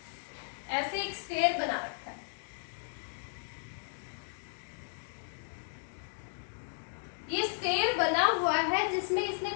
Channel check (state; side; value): silent; right; digital silence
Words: ऐसे एक स्क्वायर बना रखा है, ये स्क्वायर बना हुआ है, जिसमें इसने